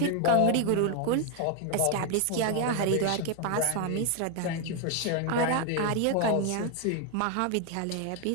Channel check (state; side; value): different; both; correlation 0.01